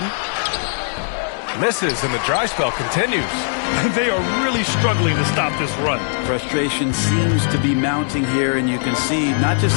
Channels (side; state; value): right; silent; digital silence